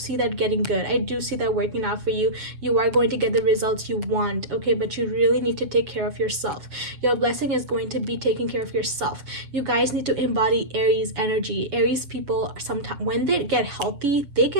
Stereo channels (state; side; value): late; left; 7.2 ms